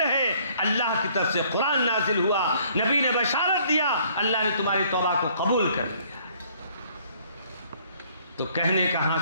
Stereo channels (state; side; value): inverted; both; correlation -0.61